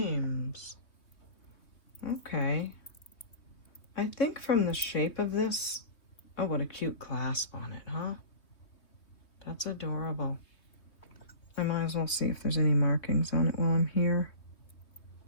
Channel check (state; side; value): late; right; 3.0 ms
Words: Okay. I think from the shape of this, oh, what a cute clasp on it, huh? That's adorable. I might as well see if there's any markings on it while I'm here.